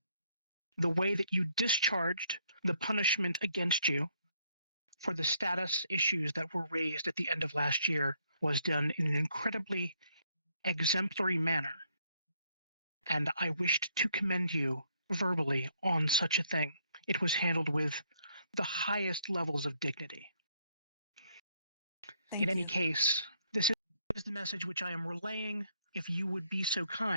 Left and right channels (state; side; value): inverted; both; correlation -0.69